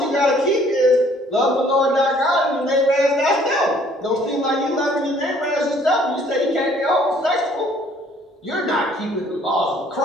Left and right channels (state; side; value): normal; both; correlation 0.59